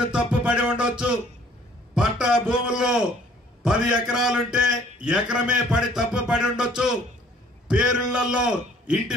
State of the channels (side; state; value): both; normal; correlation 0.57